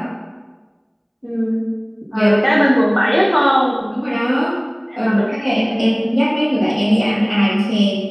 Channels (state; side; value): identical; both; correlation 1.00